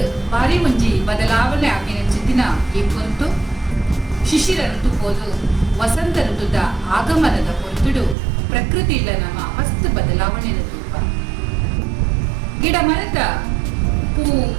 ಬಾರಿ ಒಂಜಿ ಬದಲಾವಣೆ ಆಗಿನ ಚಿತ್ತಿನ ಈ ಕುರಿತು ಶಿಶಿರ ಋತು ಪೋದು ವಸಂತ ಋತುದ ಆಗಮನದ ಹೊರತುಡು ಪ್ರಕೃತಿಯಿಂದ ನಮ್ಮ ಮಸ್ತ್ ಬದಲಾವಣೆ ತೂಪ ಗಿಡ ಮರದ ಪೂ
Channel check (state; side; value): drops out; left; at 8.2 s